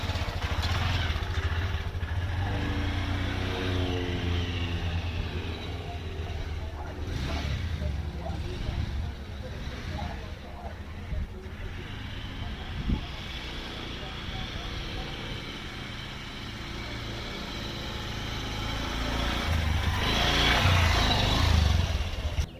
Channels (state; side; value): identical; both; correlation 1.00